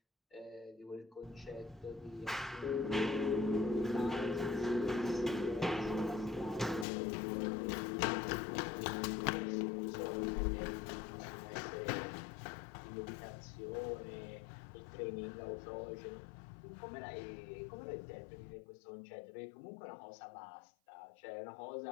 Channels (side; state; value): right; drops out; at 6.9 s